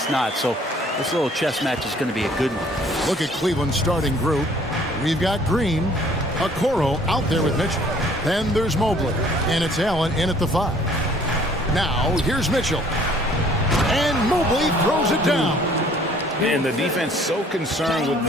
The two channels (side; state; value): both; normal; correlation 0.57